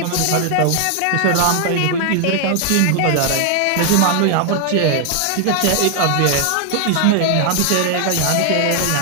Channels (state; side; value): different; both; correlation 0.00